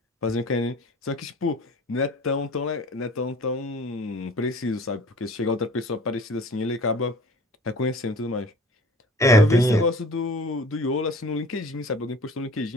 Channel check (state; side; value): normal; both; correlation 0.46